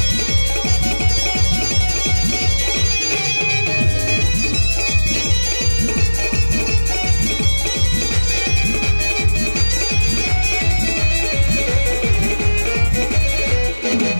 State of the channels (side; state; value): both; inverted; correlation -1.00